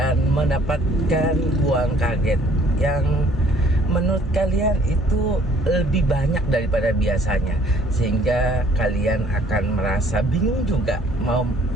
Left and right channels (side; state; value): both; normal; correlation 0.59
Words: mendapatkan uang kaget yang menurut kalian itu lebih banyak daripada biasanya, sehingga kalian akan merasa bingung juga mau